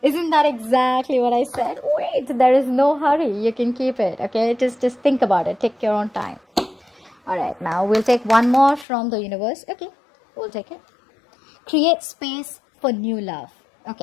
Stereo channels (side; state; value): right; drops out; at 8.8 s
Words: Isn't that exactly what I said? Wait, there is no hurry. You can keep it, okay? Just think about it. Take your own time. All right, now we'll take one more from the universe. Okay, we'll take it. Create space for new love.